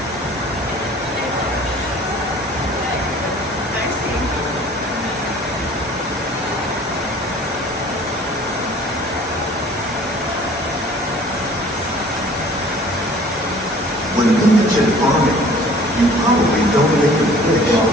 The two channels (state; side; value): normal; both; correlation 0.50